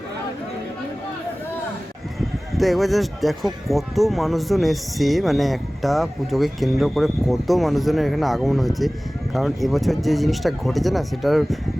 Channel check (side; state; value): both; normal; correlation 0.98